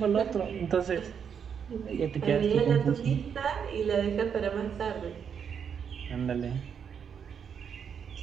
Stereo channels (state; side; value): quieter; left; 7.3 dB